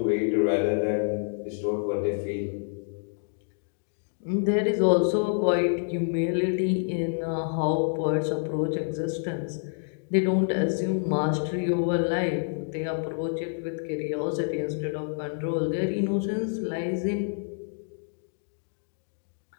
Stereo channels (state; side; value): silent; right; digital silence